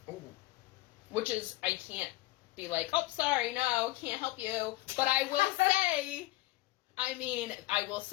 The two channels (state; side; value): quieter; right; 19.2 dB